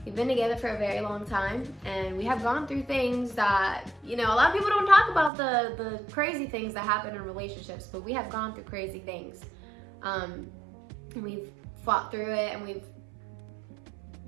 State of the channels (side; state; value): left; drops out; at 5.3 s